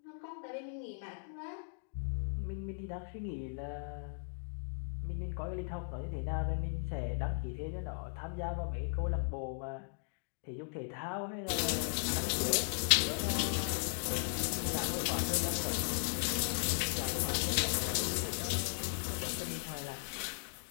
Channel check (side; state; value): right; silent; digital silence